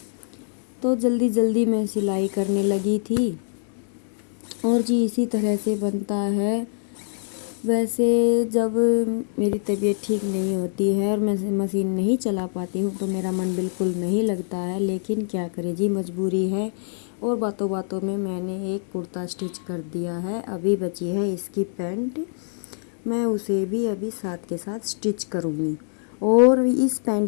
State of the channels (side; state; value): right; silent; digital silence